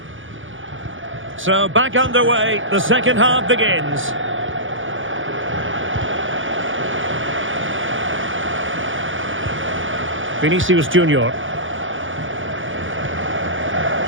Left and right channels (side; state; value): left; late; 0.57 ms